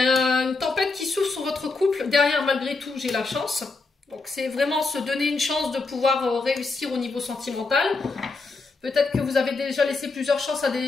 une tempête qui souffle sur votre couple. Derrière, malgré tout, j'ai la chance. Donc, c'est vraiment se donner une chance de pouvoir réussir au niveau sentimental. Peut-être que vous avez déjà laissé plusieurs chances à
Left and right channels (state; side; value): quieter; right; 3.8 dB